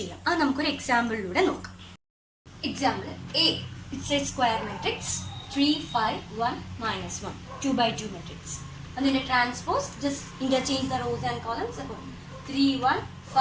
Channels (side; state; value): both; identical; correlation 1.00